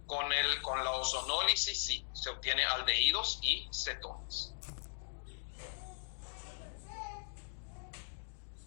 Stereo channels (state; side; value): silent; right; digital silence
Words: Con la ozonólisis sí, se obtiene aldehídos y cetonas.